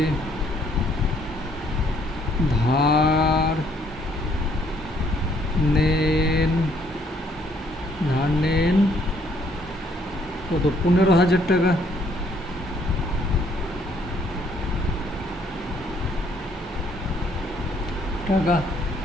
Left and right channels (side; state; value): both; normal; correlation 0.66